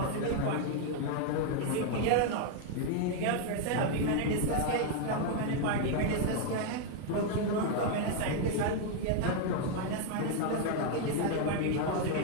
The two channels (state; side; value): different; both; correlation 0.00